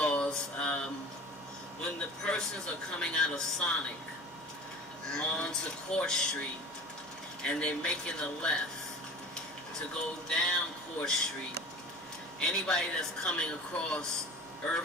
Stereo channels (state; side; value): normal; both; correlation 0.37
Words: when the persons are coming out of Sonic onto Court Street and they're making a left to go down Court Street, anybody that's coming across